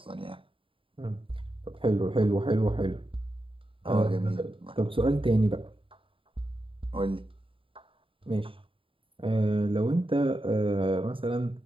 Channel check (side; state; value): left; late; 0.25 ms